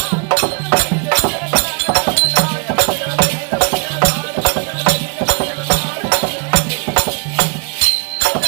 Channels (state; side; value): quieter; left; 32.7 dB